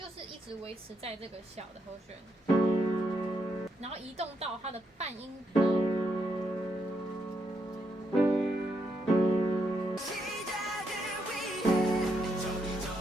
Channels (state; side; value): normal; both; correlation 0.79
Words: 是一直维持在这个小的和弦，然后移动到它的半音的。